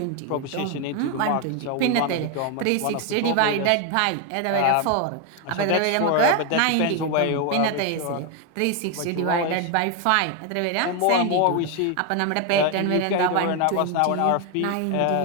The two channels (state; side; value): different; both; correlation 0.01